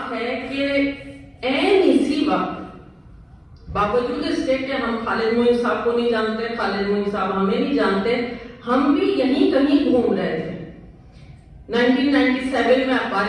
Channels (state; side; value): identical; both; correlation 1.00